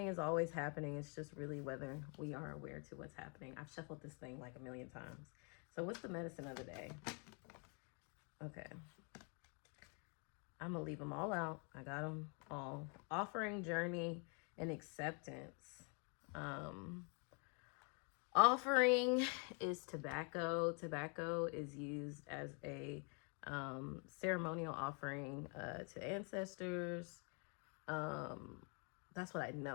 is always happening. It's just really whether we are aware to what's happening. I've shuffled this thing like a million times. So what's the medicine of the day? Okay. I'm going to leave them all out. I got them all. Offering, journey, and acceptance. Offering is tobacco. Tobacco is used as a ceremonial offering to ancestors. That's what I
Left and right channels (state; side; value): quieter; right; 37.4 dB